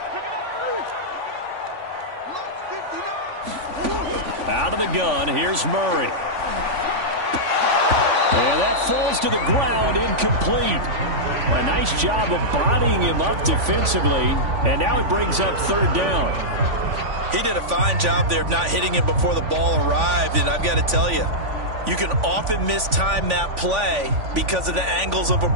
Out of the gun, here's Murray. And that falls to the ground, incomplete. A nice job of bodying him up defensively, and now it brings up 3rd down. He did a fine job there of not hitting him before the ball arrived, and I've got to tell you, you can often mistime that play because of the angles of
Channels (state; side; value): late; left; 3.5 ms